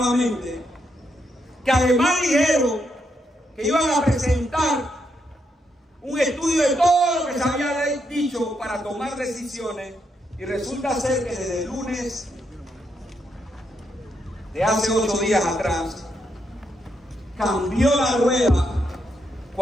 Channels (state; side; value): normal; both; correlation 0.80